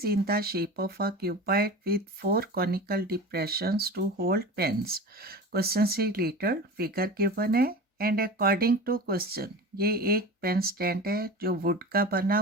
in the shape of a cuboid with 4 conical depressions to hold pens. Question से रिलेटेड फिगर गिवन है एंड अकॉर्डिंग टू क्वेश्चन ये एक पेन स्टैंड है जो वुड का बना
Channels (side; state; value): both; normal; correlation 0.32